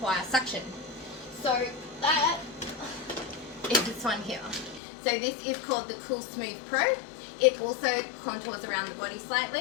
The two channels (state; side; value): drops out; right; at 4.8 s